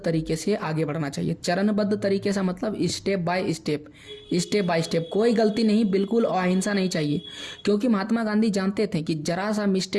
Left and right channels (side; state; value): both; identical; correlation 1.00